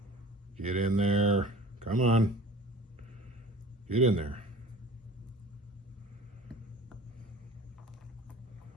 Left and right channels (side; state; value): both; normal; correlation 0.43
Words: Get in there. Come on. Get in there.